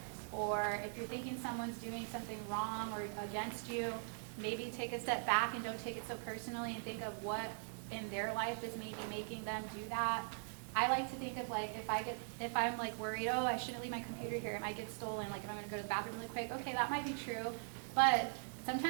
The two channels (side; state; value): left; silent; digital silence